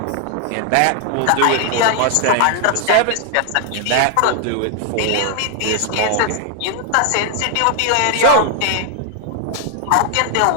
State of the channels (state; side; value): different; both; correlation 0.00